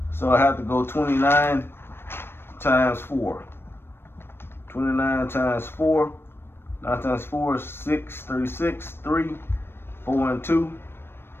So I have to go 29 times 4. 29 times 4. 9 times 4 is 6. 36. 3. 4 and 2.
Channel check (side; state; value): right; late; 0.11 ms